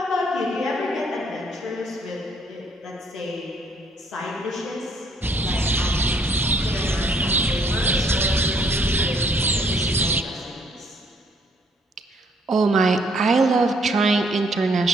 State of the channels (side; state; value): both; normal; correlation 0.65